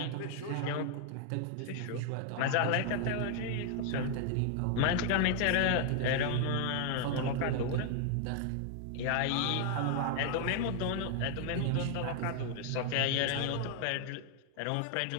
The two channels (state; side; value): different; both; correlation 0.00